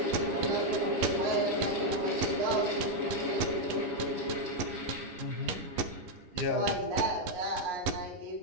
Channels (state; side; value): late; left; 11 ms